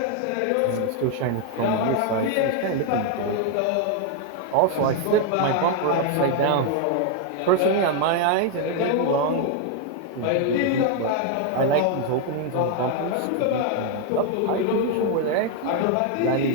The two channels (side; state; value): both; different; correlation 0.00